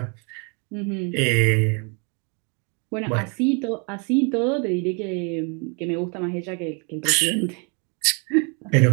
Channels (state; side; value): quieter; left; 35.0 dB